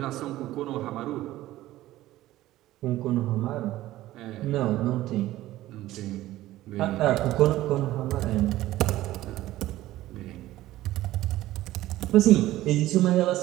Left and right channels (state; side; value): quieter; left; 15.6 dB